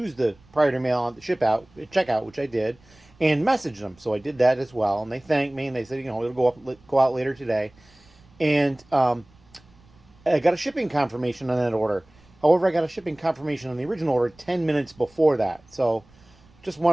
the priority mail on the checkout, which I did, and messaged them. So I did that as well, and they thanked me, and they said, it'll go out later today. And I got a shipping confirmation on that order. However, I got a shipping confirmation on the original order 10 minutes before that. So just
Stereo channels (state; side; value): noise; right; rumble, 29 dB below the sound